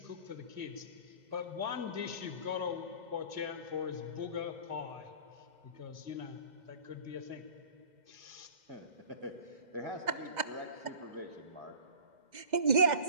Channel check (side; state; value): left; late; 2.0 ms